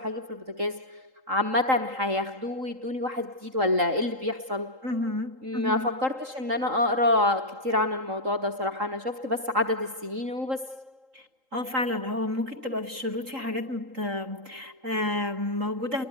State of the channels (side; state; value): left; late; 3.8 ms